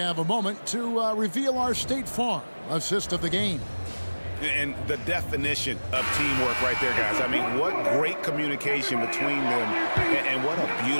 a moment to reveal our State Farm assist of the game. And the definition of teamwork right there, guys. I mean, what great communication between them, and what a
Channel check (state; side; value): inverted; both; correlation -1.00